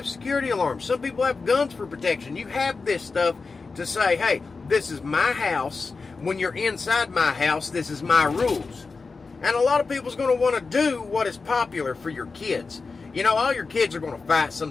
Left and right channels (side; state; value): right; quieter; 4.3 dB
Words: security alarms, some people have guns for protection. You have this stuff to say, hey, this is my house. When you're inside my house, this is my rules. And a lot of people's going to want to do what is popular for your kids. You know, all your kids are going to fight